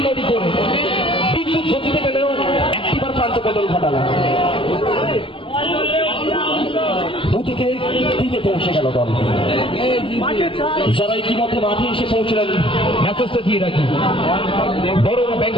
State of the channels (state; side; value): late; right; 0.25 ms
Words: করে বিদ্যুৎ গতিতে গেলেও একটিবার প্রান্ত বদল ঘটালেন। 2 থেকে 3-এ পৌঁছে গেল দল। যারা ইতিমধ্যে মাঠে এসে পৌঁছলেন মেসেজটা দিয়ে রাখি, বড়রা